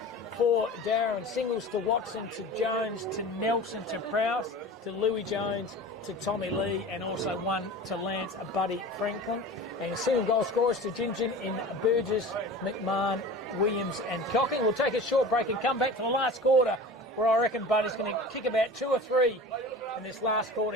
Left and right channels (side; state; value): both; normal; correlation 0.36